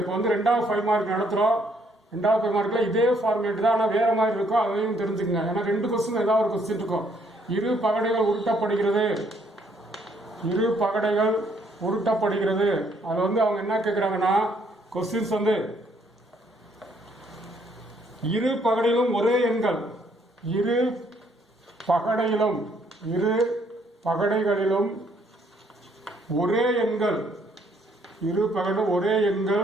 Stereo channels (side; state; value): both; normal; correlation 0.68